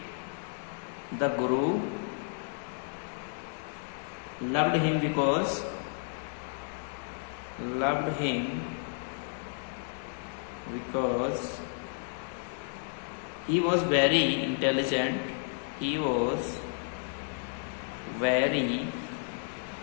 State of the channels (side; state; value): right; silent; 56 dB below the other